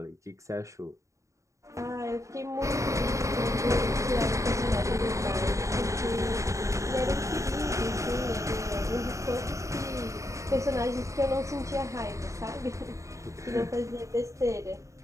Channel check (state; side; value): late; left; 0.15 ms